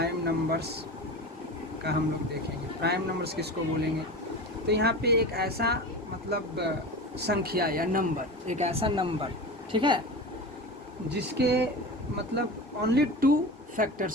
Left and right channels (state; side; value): normal; both; correlation 0.29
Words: नंबर्स का हम लोग देखेंगे। प्राइम नंबर्स किसको बोलेंगे? तो यहाँ पे एक ऐसा मतलब संख्या या नंबर, एक ऐसा नंबर, ठीक है, जिसके मतलब ओनली 2